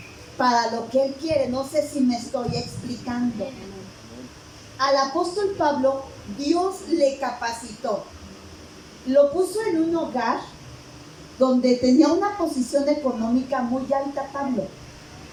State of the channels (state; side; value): identical; both; correlation 1.00